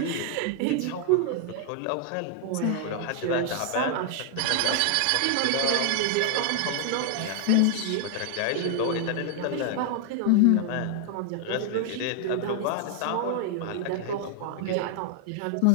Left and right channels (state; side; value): different; both; correlation 0.00